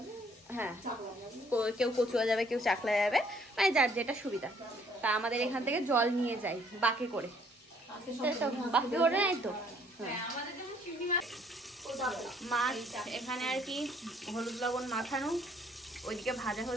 হ্যাঁ, কেউ কচুয়া যাবে, কেউ চাকলা যাবে, মানে যার যেটা সুবিধা। তা আমাদের এখান থেকে জল নিয়ে যাই বাকে করে, বাকি করে নাই তো। মাছ এখানে আর কি হলুদ লবণ মাখানো, ওইদিকে ভাজা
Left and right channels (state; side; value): normal; both; correlation 0.63